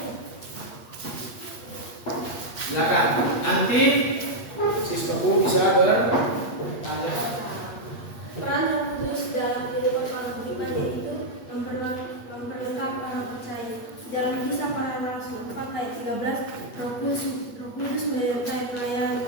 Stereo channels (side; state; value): right; late; 8.4 ms